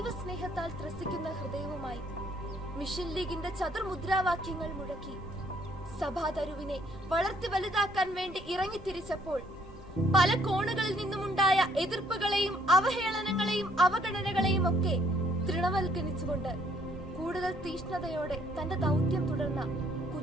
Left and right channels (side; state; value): both; normal; correlation 0.65